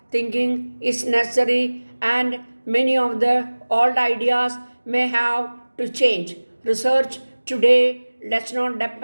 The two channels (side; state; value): both; inverted; correlation -1.00